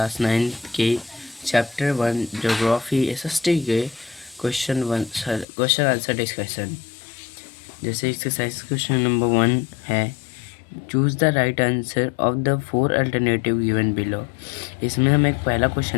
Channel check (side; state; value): right; drops out; at 5.5 s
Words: 9 के चैप्टर 1 ज्योग्राफी एसएसटी के क्वेश्चन आंसर डिस्कशन। जैसे एक्सरसाइज क्वेश्चन नंबर 1 है, choose the right answer of the 4 alternative given below. इसमें हमें एक पहला